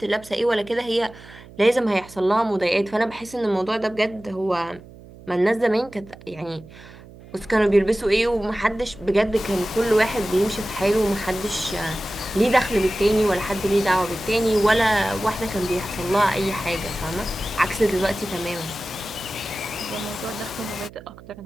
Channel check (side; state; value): right; noise; hum, 20 dB below the sound